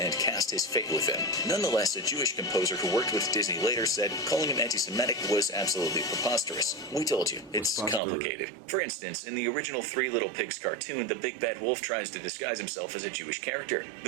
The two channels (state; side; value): drops out; left; at 8.0 s